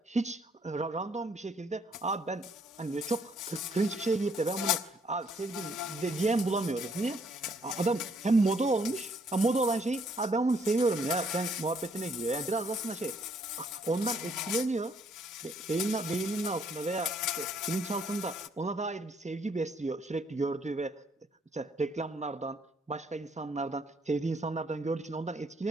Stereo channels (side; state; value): both; normal; correlation 0.67